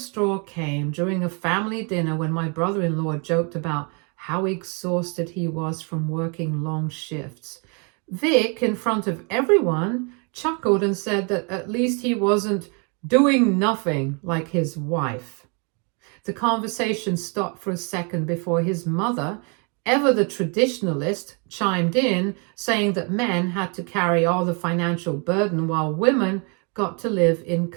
came during a family dinner when my brother-in-law joked about how exhausted he was from working long shifts. Vic, in front of everyone, chuckled and said that at least he wasn't doing nothing like his wife. The conversation stopped for a second before his mother, ever the traditionalist, chimed in, saying that men had to carry all the financial burden while women got to live in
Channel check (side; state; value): left; quieter; 34.8 dB